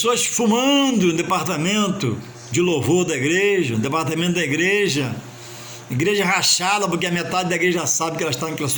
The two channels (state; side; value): identical; both; correlation 1.00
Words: fumando no departamento de louvor da igreja, no departamento da igreja rachada, porque a metade da igreja sabe que ela está naquela